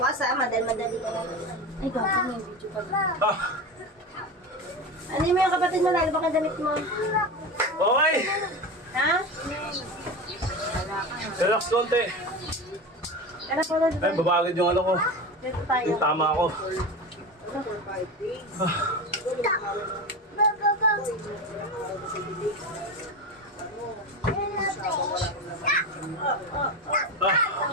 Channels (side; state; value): both; normal; correlation 0.24